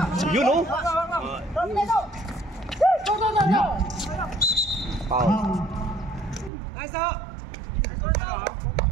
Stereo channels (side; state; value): left; drops out; at 6.5 s